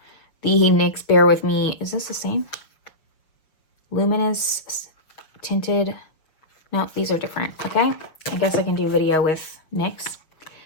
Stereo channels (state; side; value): late; right; 6.4 ms